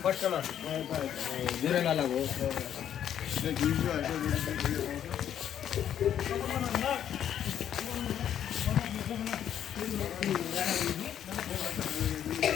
फर्स्ट में जुरे वाला वो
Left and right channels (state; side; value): quieter; right; 9.9 dB